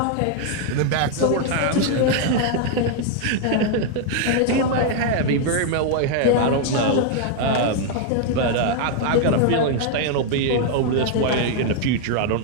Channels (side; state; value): both; different; correlation 0.00